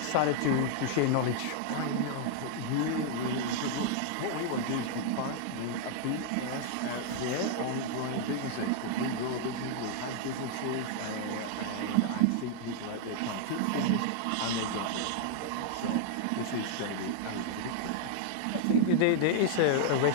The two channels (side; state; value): both; different; correlation -0.01